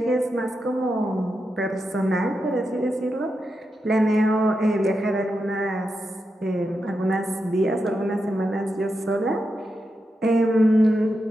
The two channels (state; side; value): normal; both; correlation 0.87